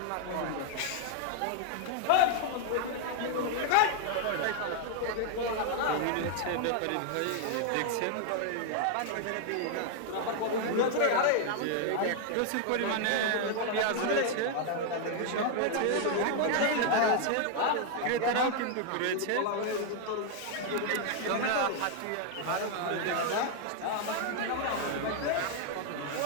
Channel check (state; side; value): different; both; correlation 0.00